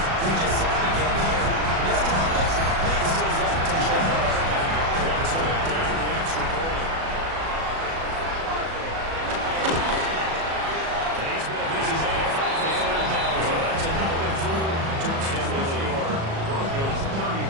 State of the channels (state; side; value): late; left; 37 ms